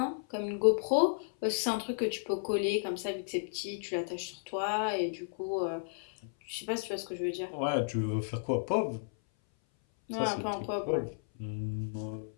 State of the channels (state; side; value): silent; right; 56 dB below the other